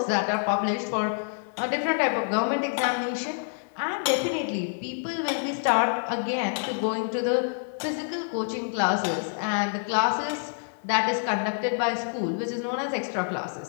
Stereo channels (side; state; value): right; silent; digital silence